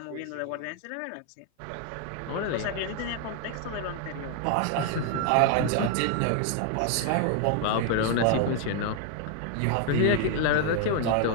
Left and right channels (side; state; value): both; different; correlation 0.00